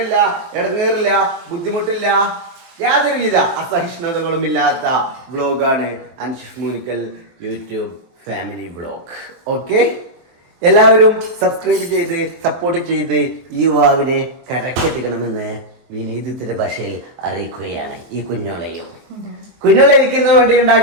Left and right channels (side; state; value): left; late; 23 ms